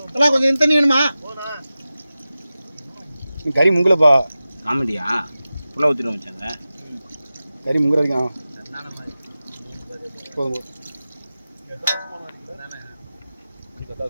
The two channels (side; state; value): both; inverted; correlation -0.95